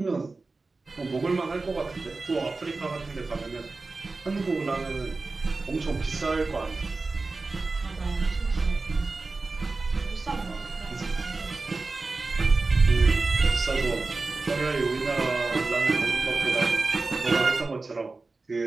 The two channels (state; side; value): quieter; left; 3.7 dB